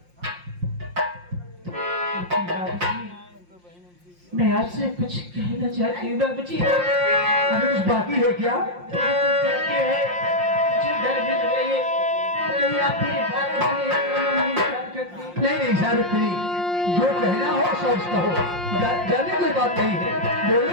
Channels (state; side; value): late; left; 5.6 ms